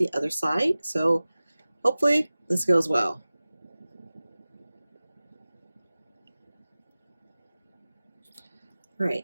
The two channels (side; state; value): both; inverted; correlation -0.97